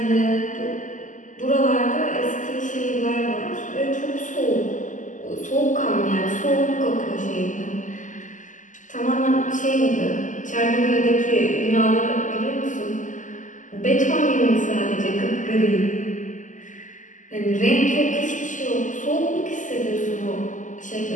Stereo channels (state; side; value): late; right; 0.37 ms